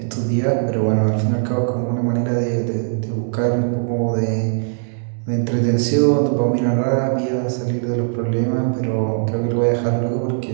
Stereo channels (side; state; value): left; silent; 66 dB below the other